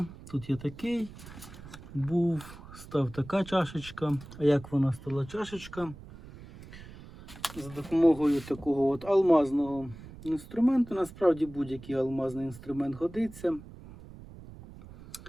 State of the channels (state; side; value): noise; right; rumble, 17 dB below the sound